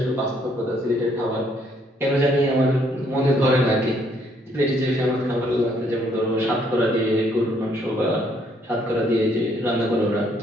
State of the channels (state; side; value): normal; both; correlation 0.68